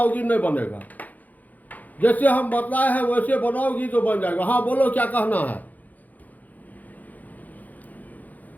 नहीं बनेगा, जैसे हम बतलाए हैं वैसे बनाओगी तो बन जाएगा। हाँ बोलो क्या कहना है।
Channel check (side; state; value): right; late; 0.080 ms